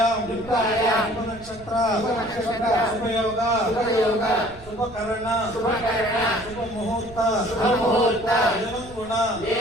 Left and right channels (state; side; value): noise; right; rumble, 19 dB below the sound